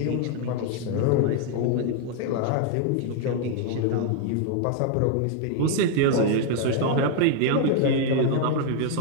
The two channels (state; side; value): different; both; correlation 0.00